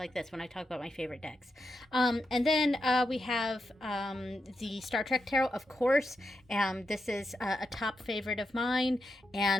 this, when I talk about my favorite decks. And then we have the Star Trek Tarot, of course. This is a top favorite of mine.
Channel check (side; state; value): both; normal; correlation 0.86